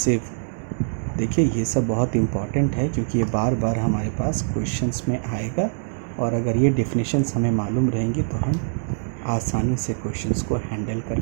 देखिए ये सब बहुत इम्पॉर्टेंट है क्योंकि ये बार बार हमारे पास क्वेश्चंस में आएगा और अगर ये डेफिनेशंस हमें मालूम रहेंगी तो हम आसानी से क्वेश्चंस को हैंडल कर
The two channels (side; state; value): left; silent; digital silence